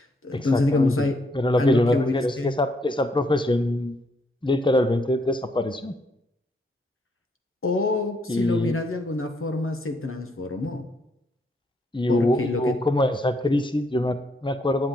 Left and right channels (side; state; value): both; normal; correlation 0.73